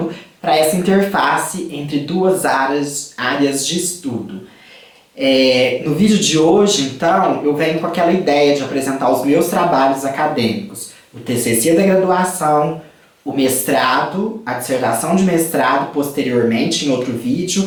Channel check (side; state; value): both; identical; correlation 1.00